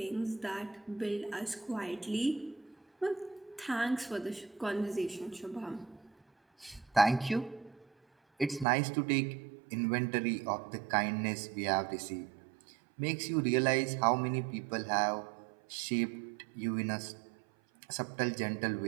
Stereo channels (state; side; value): drops out; left; at 8.7 s